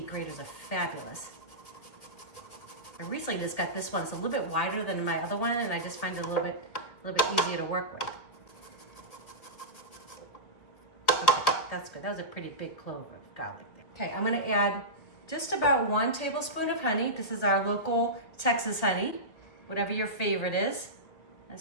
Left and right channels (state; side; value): late; right; 1.8 ms